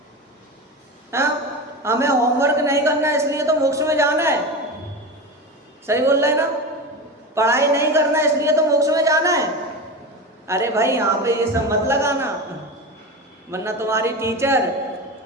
हाँ? हमें होमवर्क नहीं करना इसलिए तो मोक्ष में जाना है। सही बोल रहे हैं ना? पढ़ाई नहीं करना इसलिए तो मोक्ष में जाना है। अरे भाई यहाँ पे ये सब मत लगाना, वरना तुम्हारी टीचर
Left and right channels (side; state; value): both; normal; correlation 0.24